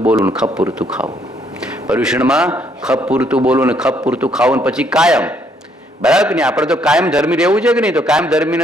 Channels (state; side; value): normal; both; correlation 0.69